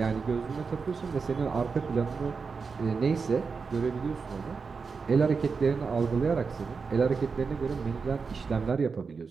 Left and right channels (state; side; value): quieter; left; 5.1 dB